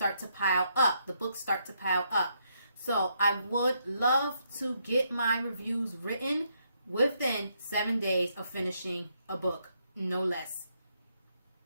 to pile up. The books start to pile up. So I would love to get my reviews written within 7 days of finishing a book, no less.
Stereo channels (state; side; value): inverted; both; correlation -0.75